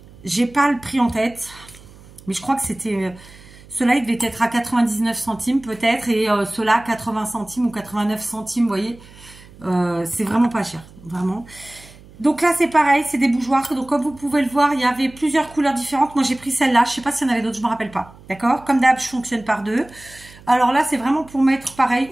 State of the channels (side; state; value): right; noise; hum, 22 dB below the sound